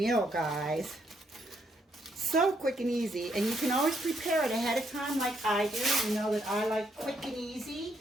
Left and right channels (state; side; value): normal; both; correlation 0.75